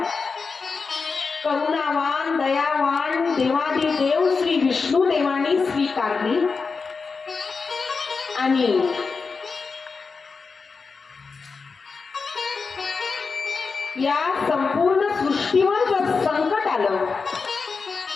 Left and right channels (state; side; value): quieter; right; 4.7 dB